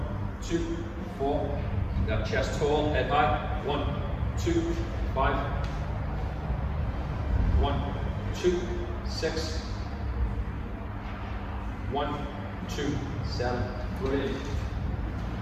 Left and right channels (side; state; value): both; identical; correlation 1.00